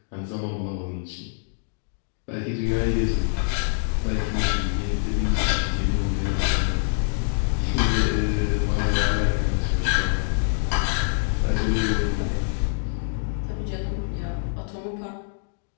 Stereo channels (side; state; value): right; silent; digital silence